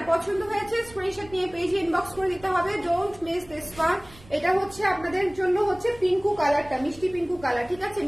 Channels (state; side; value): noise; right; rumble, 22 dB below the sound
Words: পছন্দ হয়েছে স্ক্রিনশট নিয়ে পেজে ইনবক্স করে দিতে হবে, ডোন্ট মিস দিস ওয়ান। এটা হচ্ছে আপনাদের জন্য হচ্ছে পিঙ্কু কালারটা, মিষ্টি পিঙ্কু কালার, ঠিক আছে?